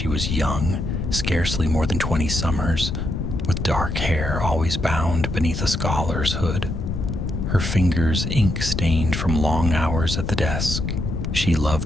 was young, scarcely more than 20 summers, with dark hair always bound beneath a scholar's hood, her fingers ink-stained from long hours at the desk. She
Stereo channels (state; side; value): noise; left; rumble, 3 dB below the sound